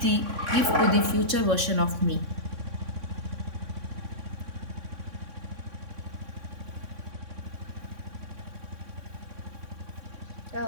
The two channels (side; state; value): left; late; 3.6 ms